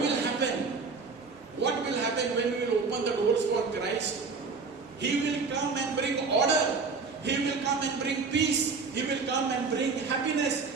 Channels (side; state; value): left; quieter; 4.6 dB